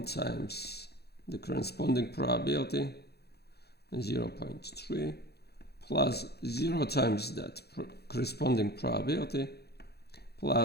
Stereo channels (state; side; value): late; right; 0.47 ms